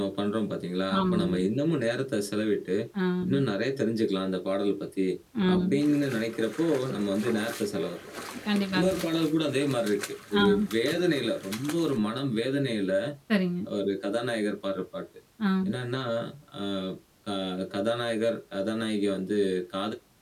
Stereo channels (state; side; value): identical; both; correlation 1.00